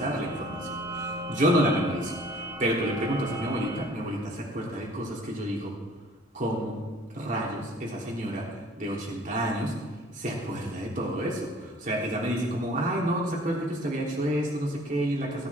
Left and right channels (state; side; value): normal; both; correlation 0.53